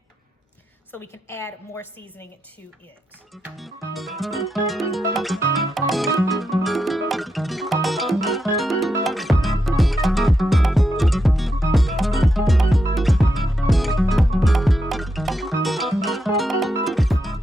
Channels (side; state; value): both; normal; correlation 0.84